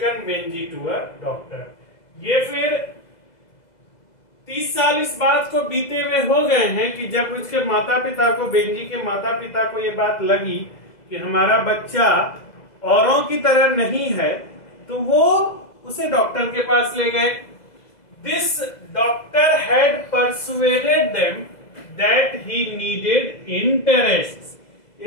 Benjy to a doctor. ये फिर 30 साल इस बात को बीते हुए हो गए हैं कि जब उसके माता पिता को, बेंजी के माता पिता को ये बात लगी कि हमारा बच्चा औरों की तरह नहीं है, तो वो उसे डॉक्टर के पास ले गए। This doctor had persuaded them that he needed interests.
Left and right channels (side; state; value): right; late; 2.0 ms